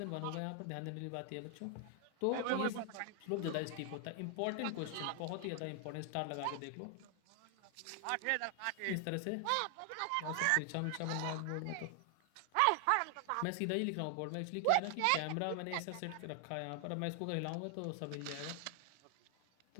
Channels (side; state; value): both; different; correlation 0.00